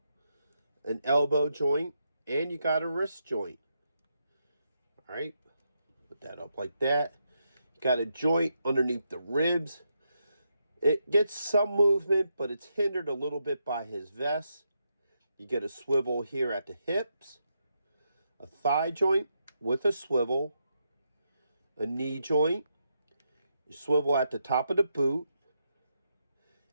an elbow joint, and you got a wrist joint. Alright, put that up like that. Got a joint underneath the ribs. It gets some movement, but it's hindered a little bit by his vest. You get a swivel here at the hips, a thigh joint with a swivel, a knee joint, a swivel at the top of the boot,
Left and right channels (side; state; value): both; inverted; correlation -0.82